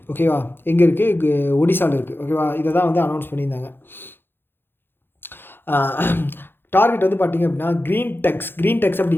ஓகேவா, எங்கே இருக்குது? ஒடிசாவில் இருக்குது, ஓகேவா. இதை தான் வந்து அனௌன்ஸ் பண்ணியிருந்தாங்க. டார்கெட் வந்து பார்த்திங்க அப்படின்னா க்ரீன் டெக்ஸ்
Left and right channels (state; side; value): late; right; 0.10 ms